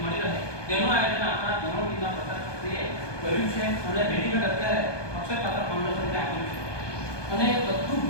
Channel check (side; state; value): right; late; 1.2 ms